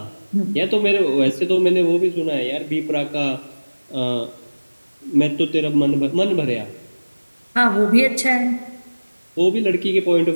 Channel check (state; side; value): inverted; both; correlation -1.00